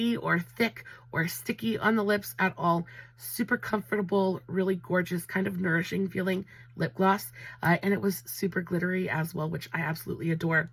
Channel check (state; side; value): identical; both; correlation 1.00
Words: or thick or sticky on the lips at all. Super comfortable, really gorgeous, kind of nourishing feeling lip gloss. And it was super glittery as well, which I absolutely adore.